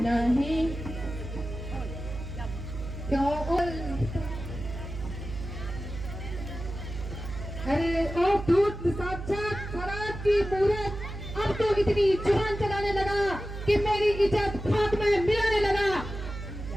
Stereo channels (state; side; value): noise; right; hum, 8 dB below the sound